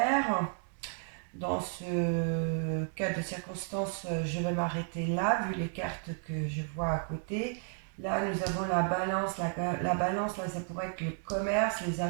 Dans ce cas de circonstance, je vais m'arrêter là, vu les cartes que je vois à côté. Là, nous avons la balance. La balance, là, ça pourrait être le commerce, les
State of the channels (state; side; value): silent; left; 56 dB below the other